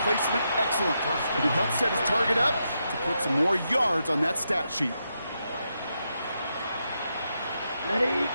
placement, excellent. And it helped set his target up to put some more yards on that stat sheet. Ready?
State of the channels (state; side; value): inverted; both; correlation -0.83